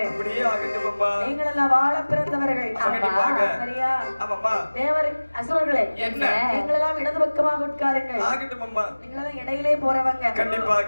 நீங்கள் எல்லாம் வாழ பிறந்தவர்கள். சரியா? தேவர் அசுரர்களே நீங்கள் எல்லாம் இடது பக்கமாக உட்காருங்கள். நீங்கள் எல்லாம் இடையிலே போறவங்க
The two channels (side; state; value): both; inverted; correlation -1.00